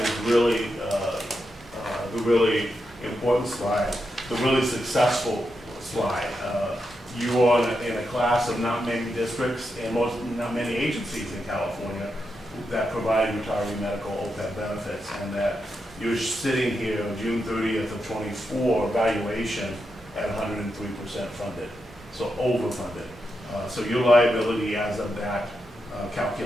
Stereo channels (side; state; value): both; normal; correlation 0.86